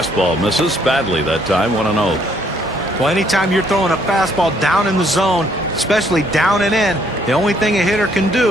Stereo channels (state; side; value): normal; both; correlation 0.67